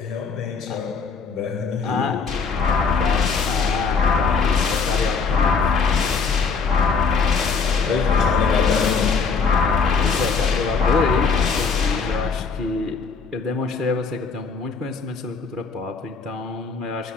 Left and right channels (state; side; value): quieter; right; 5.1 dB